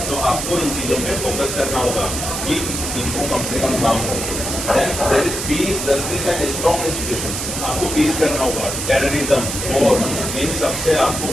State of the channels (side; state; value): right; noise; hiss, 4 dB below the sound